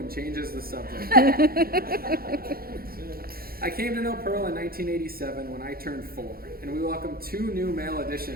changes the subject. I came to know Pearl in 1987 when I turned 4, and we welcomed 2 new male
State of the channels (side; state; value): left; late; 0.44 ms